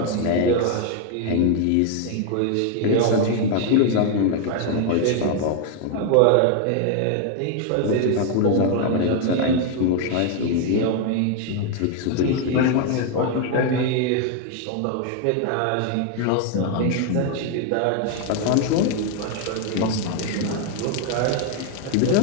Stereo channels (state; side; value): different; both; correlation 0.01